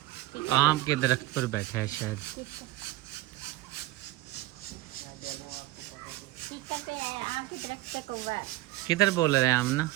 आम के दरख्त पर बैठा है शायद। किधर बोल रहे हैं आमना?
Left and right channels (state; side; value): quieter; left; 17.1 dB